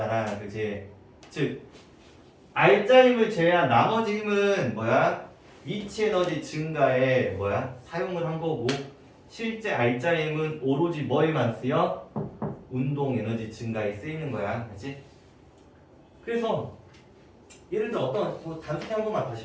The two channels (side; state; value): both; identical; correlation 1.00